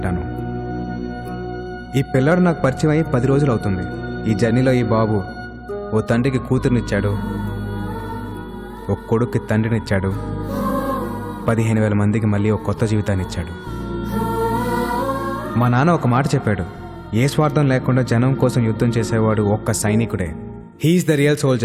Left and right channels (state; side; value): identical; both; correlation 1.00